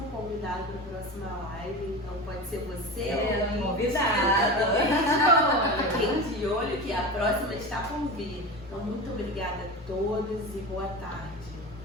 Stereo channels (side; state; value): both; normal; correlation 0.27